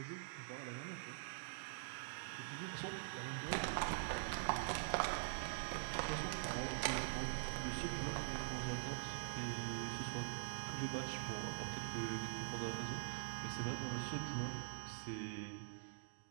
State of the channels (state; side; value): silent; left; digital silence